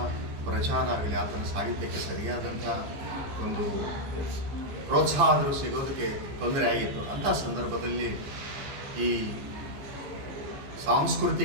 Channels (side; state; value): left; late; 15 ms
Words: ಪ್ರಚಾರ ಆಗಲಿ, ಆತನ ಸಾಹಿತ್ಯಕ್ಕೆ ಸರಿಯಾದಂಥ ಒಂದು ಪ್ರೋತ್ಸಾಹ ಆದರೂ ಸಿಗೋದಕ್ಕೆ ತೊಂದರೆ ಆಗಿತ್ತು. ಅಂಥ ಸಂದರ್ಭದಲ್ಲಿ ಈ